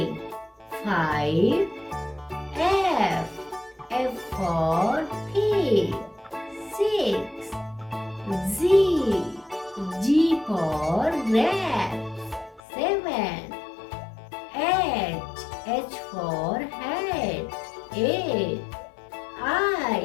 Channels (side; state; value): right; drops out; at 12.6 s